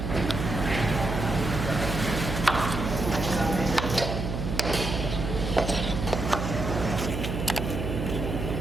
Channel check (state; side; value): noise; right; hum, 4 dB below the sound